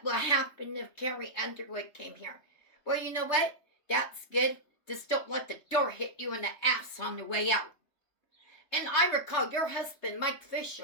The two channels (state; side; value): late; right; 3.3 ms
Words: will happen if Carrie Underwood came here. Well, you know what? That's good. Just don't let the door hit you in the ass on the way out. And I recall your husband, Mike